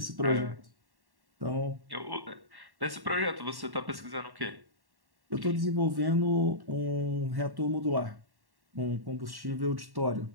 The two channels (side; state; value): left; late; 1.1 ms